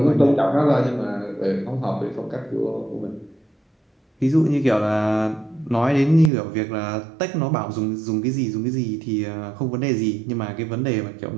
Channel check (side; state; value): left; drops out; at 6.3 s